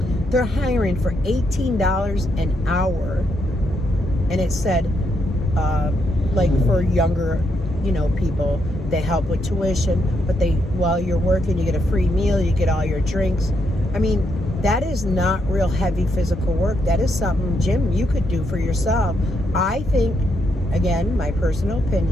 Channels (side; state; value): both; normal; correlation 0.78